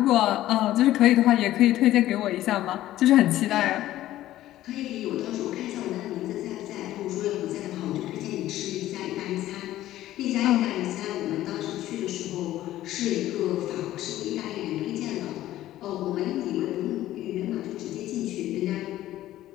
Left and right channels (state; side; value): quieter; right; 14.3 dB